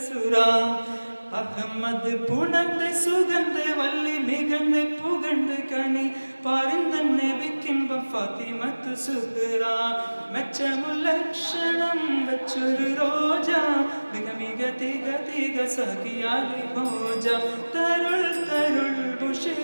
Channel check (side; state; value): both; inverted; correlation -1.00